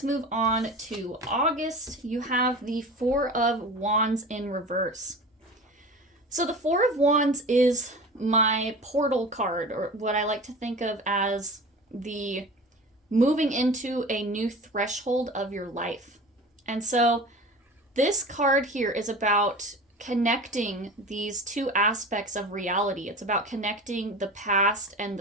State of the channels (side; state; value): both; normal; correlation 0.35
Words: move on to August. You have the Four of Wands in reverse. So the Four of Wands is my portal card, or what I like to think of as the moving into a new threshold of your life. And so this card here is about connecting these two aspects of reality. It's about connecting the past and